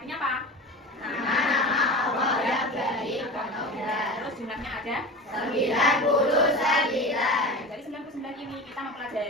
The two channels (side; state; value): both; normal; correlation 0.31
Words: apa? Nama Allah yang baik pengabdian. Terus jumlahnya ada 99. dari 99 ini kita